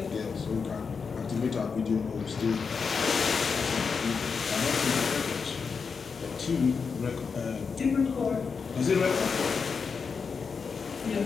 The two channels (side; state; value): right; quieter; 5.5 dB